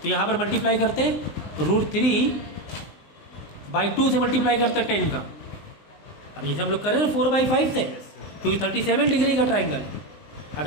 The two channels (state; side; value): late; right; 19 ms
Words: तो यहाँ पर मल्टीप्लाई करते हैं √3/2 से मल्टीप्लाई करते हैं 10 का। अब जैसे हम लोग करें ना 4/5 से, क्योंकि 37 डिग्री का ट्राइंगल,